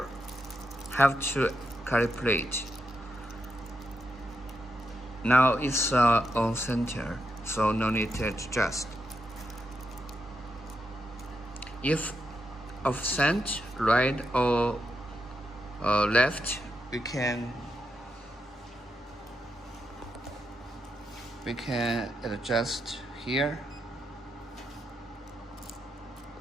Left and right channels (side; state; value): both; normal; correlation 0.84